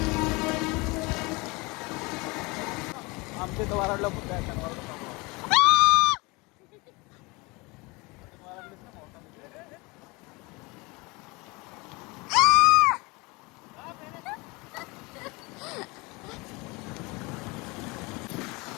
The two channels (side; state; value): right; quieter; 25.7 dB